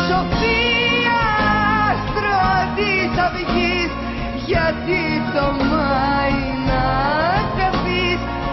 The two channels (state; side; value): identical; both; correlation 1.00